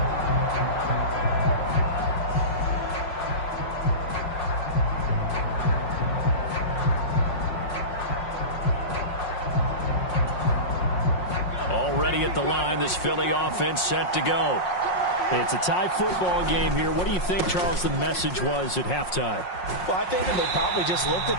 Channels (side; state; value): right; late; 5.5 ms